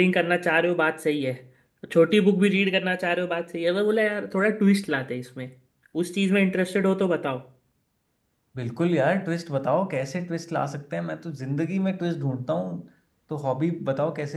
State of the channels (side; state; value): both; identical; correlation 1.00